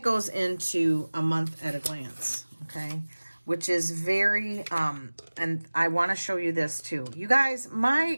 goes into a month at a glance. Okay. Which is very, and I want to show you this too. You guys, my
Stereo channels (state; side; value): inverted; both; correlation -1.00